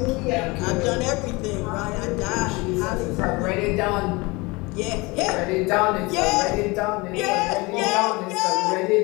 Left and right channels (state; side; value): quieter; right; 24.7 dB